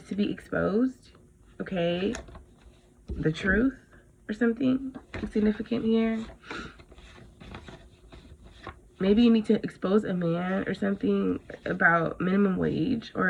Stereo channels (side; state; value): both; identical; correlation 1.00